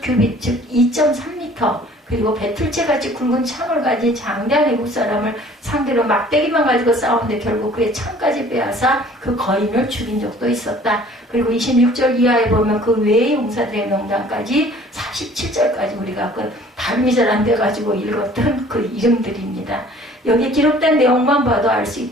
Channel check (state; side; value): normal; both; correlation 0.52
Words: 즉 2.3m 그리고 배틀채같이 굵은 창을 가진 장대한 애국 사람을 상대로 막대기만 가지고 싸우는데 결국 그의 창까지 빼앗아 그 거인을 죽인 적도 있었다. 그리고 26절 이하에 보면 그 외의 용사들의 명단까지 47절까지 우리가 그 발음이 잘 안 돼가지고 읽었던 그 이름들입니다. 여기 기록된 내용만 봐도 알 수